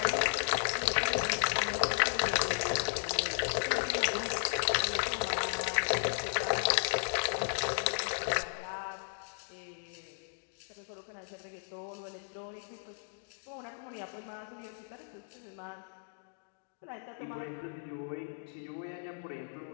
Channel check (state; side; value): silent; right; digital silence